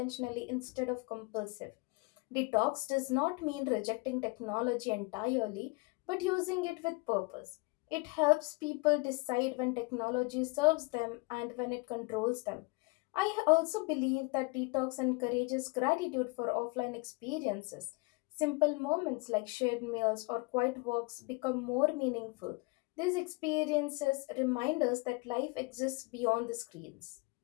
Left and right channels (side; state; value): right; quieter; 26.8 dB